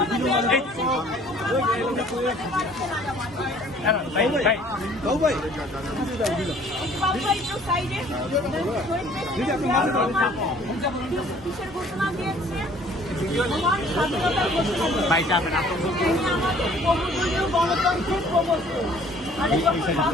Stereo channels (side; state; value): both; normal; correlation 0.55